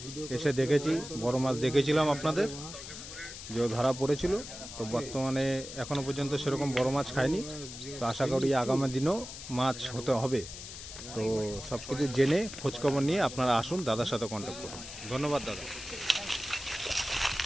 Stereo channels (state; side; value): noise; left; hiss, 11 dB below the sound